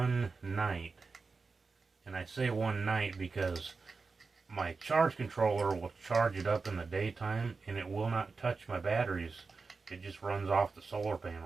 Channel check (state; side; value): quieter; left; 4.4 dB